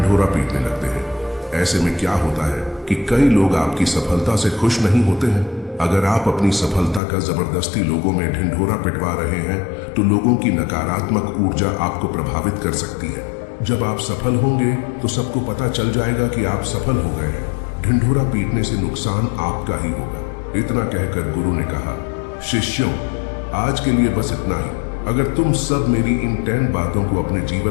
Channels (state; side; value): drops out; right; at 7.0 s